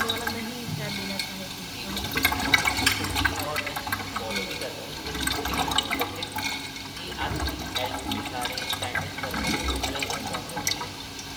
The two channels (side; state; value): both; identical; correlation 1.00